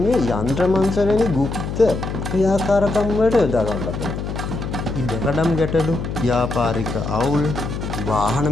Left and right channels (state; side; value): noise; left; hum, 5 dB below the sound